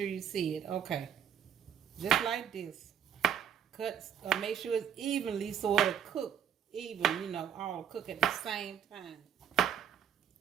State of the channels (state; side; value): quieter; left; 8.7 dB